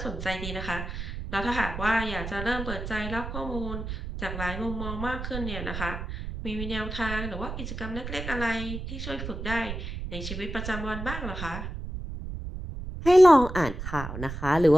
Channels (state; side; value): noise; right; rumble, 7 dB below the sound